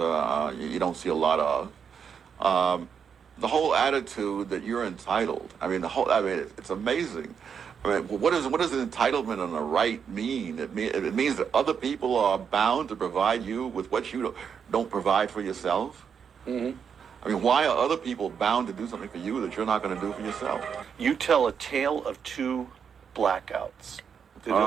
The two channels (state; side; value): quieter; left; 7.0 dB